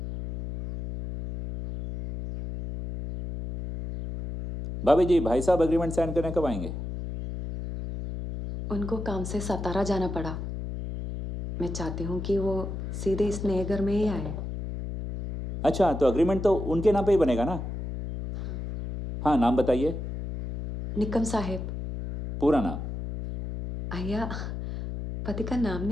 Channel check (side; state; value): left; noise; hum, 6 dB below the sound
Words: भाभी जी, भाई साहब एग्रीमेंट साइन करने कब आएंगे? उनको काम से सतारा जाना पड़ा। मैं चाहती हूँ कि वो सीधे इस नए घर में ही आए। अच्छा, तो एग्रीमेंट तो उनके नाम पे ही बनेगा ना? हाँ, नाम बताइए। निकम साहेब। पूरा नाम? आया पति का नाम